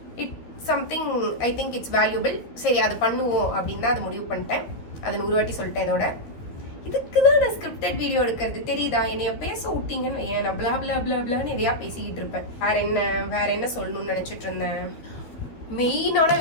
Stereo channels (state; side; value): late; right; 13 ms